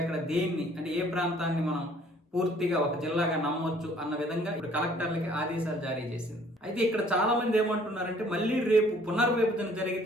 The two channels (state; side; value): normal; both; correlation 0.58